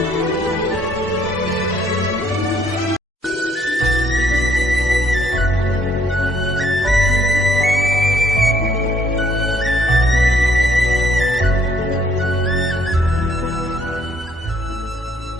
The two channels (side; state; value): both; normal; correlation 0.66